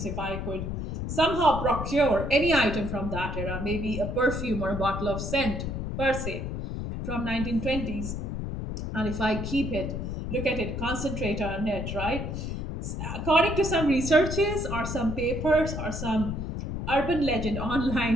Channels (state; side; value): noise; left; rumble, 4 dB below the sound